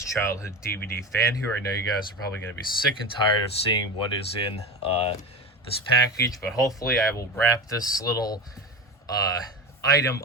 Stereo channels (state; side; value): normal; both; correlation 0.25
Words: Childhood DVD Fan here. I know you guys are probably going to be sick and tired of seeing what is in this package, but hopefully I will wrap this little item